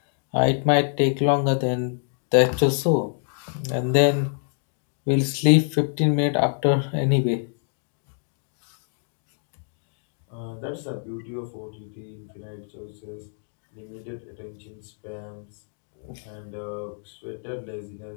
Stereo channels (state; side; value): silent; right; digital silence